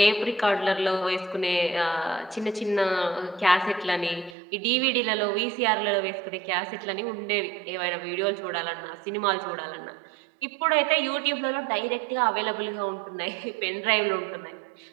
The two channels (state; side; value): drops out; left; at 4.4 s